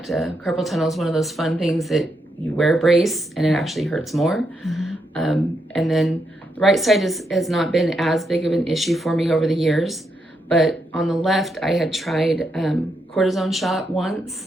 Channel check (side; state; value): both; normal; correlation 0.80